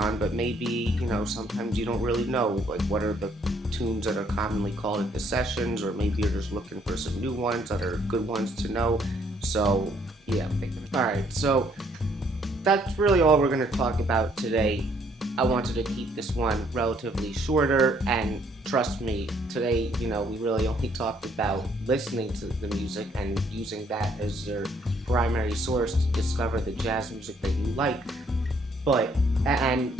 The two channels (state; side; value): normal; both; correlation 0.66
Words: but maybe, sometimes you don't really know, like, what are the tunes that are commonly called at the sessions, or maybe you're just looking for some new ones that are good ones to know. So, yeah, I'm thinking. Alright, so that's really all we're going to talk about today. I wanted to keep this one relatively shorter, and trust me, today, we really only talked about listening to the music and using that as your primary source to discover the jazz music that you like,